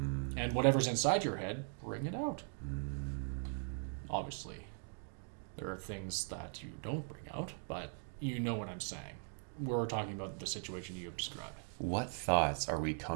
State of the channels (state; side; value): silent; left; 51 dB below the other